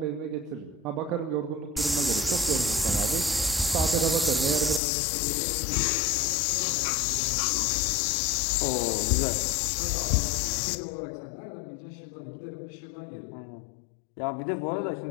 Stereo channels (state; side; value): drops out; right; at 4.8 s